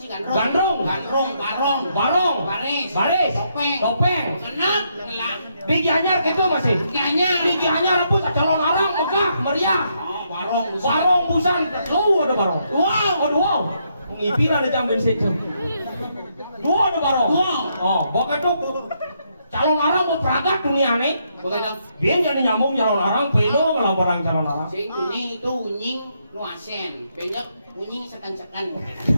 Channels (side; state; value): both; inverted; correlation -0.76